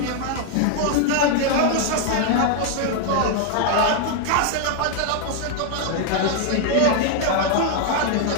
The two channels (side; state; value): both; different; correlation 0.00